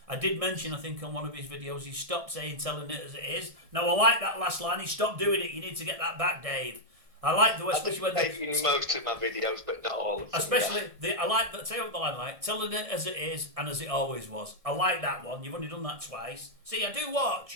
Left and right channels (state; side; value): late; left; 1.6 ms